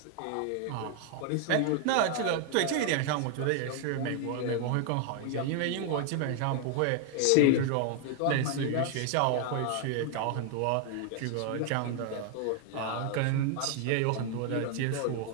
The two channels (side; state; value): both; different; correlation 0.00